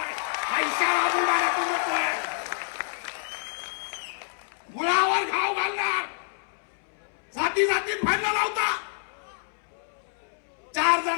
पैशाला बुडाला तू नकोय, मुळावर घाव घालणार. जाती जातीत भांडण लावता. 4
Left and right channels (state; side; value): silent; right; 60 dB below the other